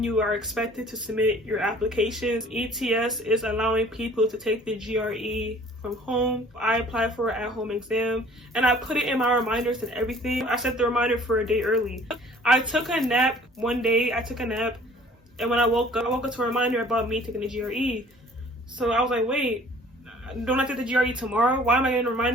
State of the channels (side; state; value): both; normal; correlation 0.52